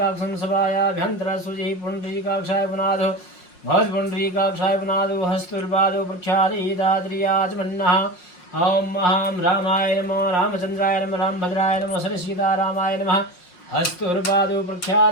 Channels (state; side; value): late; right; 5.6 ms